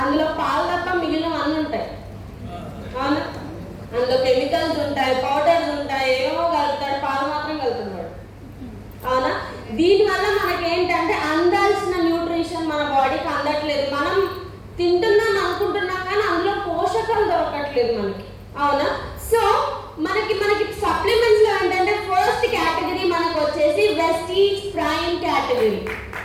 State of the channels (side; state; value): both; identical; correlation 1.00